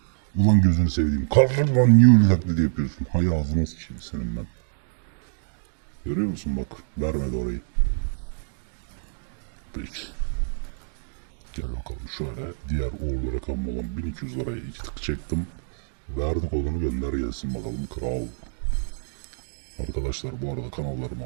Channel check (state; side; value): silent; left; digital silence